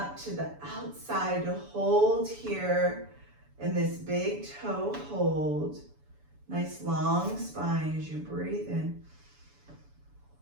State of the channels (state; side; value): late; left; 7.0 ms